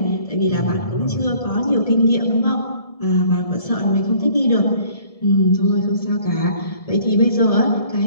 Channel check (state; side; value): late; right; 1.7 ms